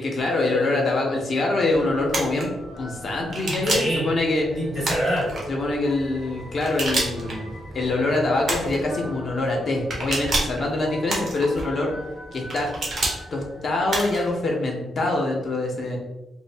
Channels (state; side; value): normal; both; correlation 0.80